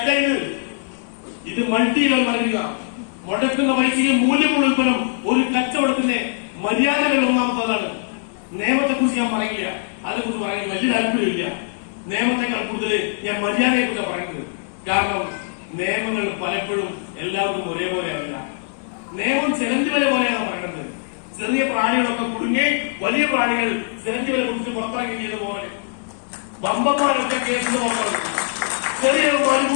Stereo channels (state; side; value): silent; right; 64 dB below the other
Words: ഇത് മൾട്ടി ലെവൽ മാറ്റുക. മുടക്കുന്ന പൈസയെ മൂല്യമുള്ള ഉൽപ്പന്നം ഒരു കച്ചവടത്തിന്റെ മര്യാദകൾ ഒന്നാമത്തതാണ്. നിയമത്തെക്കുറിച്ച് ഞാൻ പറയില്ല, അതിനെക്കുറിച്ച് പറയാൻ വലിയ താല്പര്യമില്ല. നിയമത്തെക്കാൾ കൂടുതൽ ഞാൻ മര്യാദയെക്കുറിച്ച് പറയുന്നത്. കാരണം നിയമങ്ങൾ പലപ്പോഴും എല്ലാവർക്കും ഒരേപോലെയല്ല. നിയമം ചിലന്തി വല പോലെയാണ് പറയുന്നത്. ചെറിയ പ്രാണികളൊക്കെ കുടുങ്ങി വലിയ പ്രാണികൾ ചിലന്തി വല കുറിച്ച് പുറത്തിറങ്ങി ചെയ്ത പോലെ ബമ്പന്മാരൊക്കെ കേസിന് പുറത്തിറങ്ങി ചെറിയ